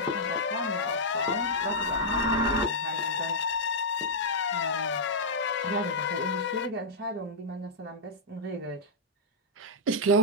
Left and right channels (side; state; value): both; normal; correlation -0.08